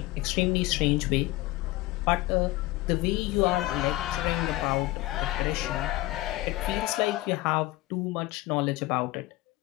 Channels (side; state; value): right; quieter; 18.6 dB